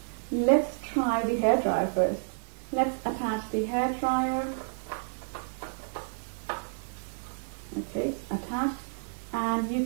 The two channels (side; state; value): left; silent; digital silence